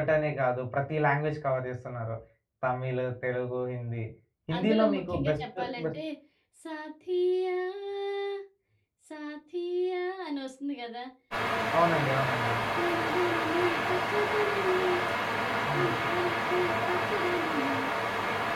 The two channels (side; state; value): both; identical; correlation 1.00